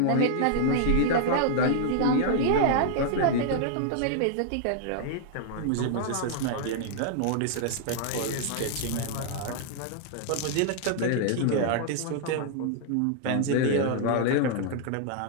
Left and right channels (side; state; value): both; different; correlation -0.01